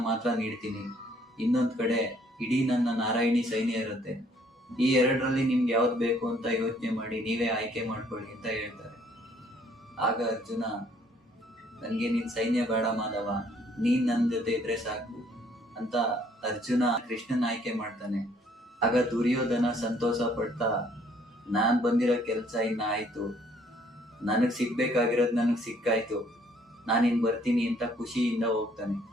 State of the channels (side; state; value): both; normal; correlation 0.63